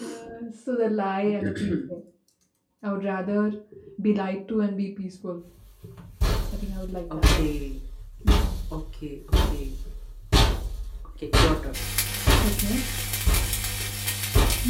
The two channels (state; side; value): identical; both; correlation 1.00